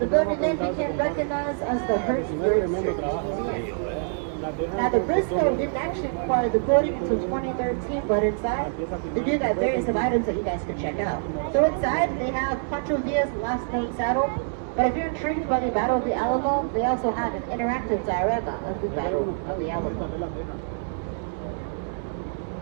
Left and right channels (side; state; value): left; silent; digital silence